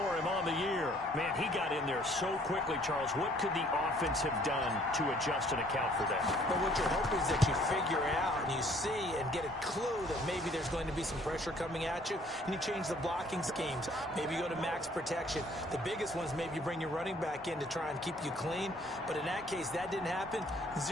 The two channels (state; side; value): normal; both; correlation 0.59